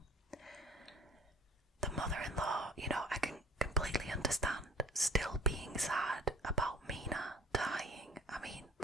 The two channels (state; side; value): normal; both; correlation 0.47